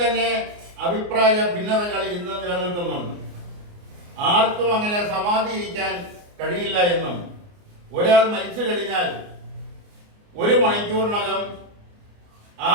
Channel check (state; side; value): late; left; 29 ms